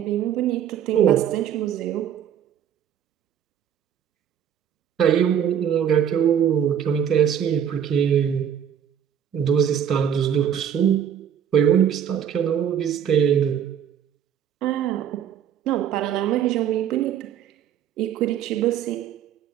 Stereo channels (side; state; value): left; quieter; 8.9 dB